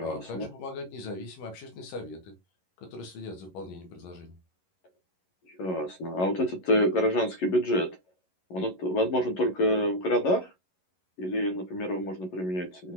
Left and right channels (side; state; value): right; late; 11 ms